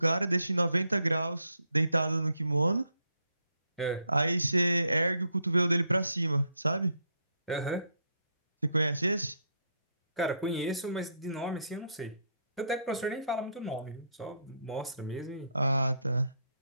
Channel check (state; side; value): inverted; both; correlation -0.74